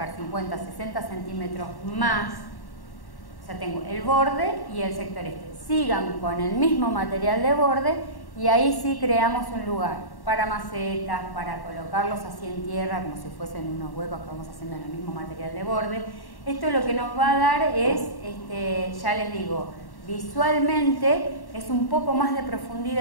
50, 60 centímetros más, o sea, tengo el borde y el sector este. Sigan con el mismo material de borde y ahí sí creamos un lugar para macetas, para colocarlos así en tierra, como si fuesen unos huecos que vamos haciendo en el mismo material de borde. Esto lo que nos va a dar es, ya les digo, visualmente es un poco más de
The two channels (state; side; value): late; right; 1.1 ms